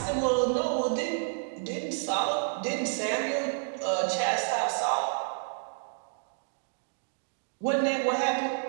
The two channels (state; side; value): silent; left; digital silence